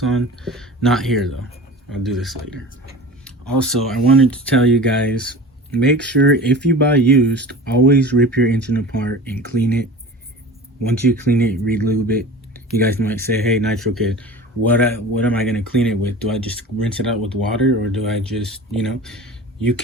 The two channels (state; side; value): normal; both; correlation 0.37